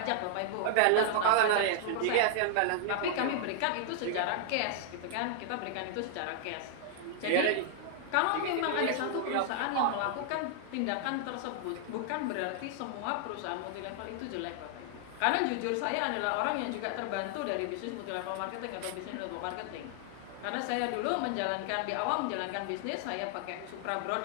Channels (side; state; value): both; different; correlation 0.00